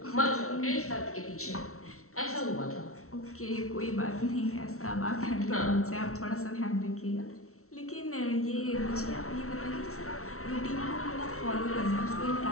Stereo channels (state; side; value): late; right; 0.63 ms